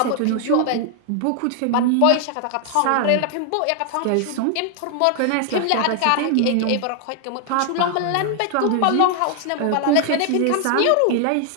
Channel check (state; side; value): different; both; correlation 0.00